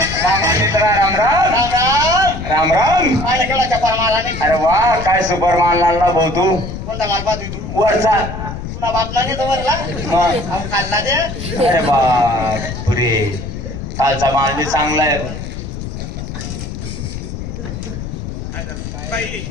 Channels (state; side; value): noise; left; rumble, 7 dB below the sound